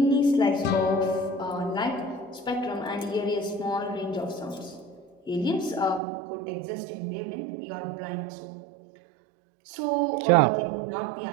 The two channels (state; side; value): drops out; left; at 6.0 s